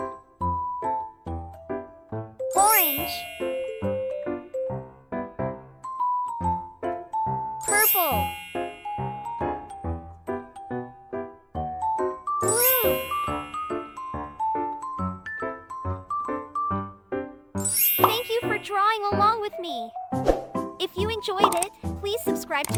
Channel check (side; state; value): both; identical; correlation 1.00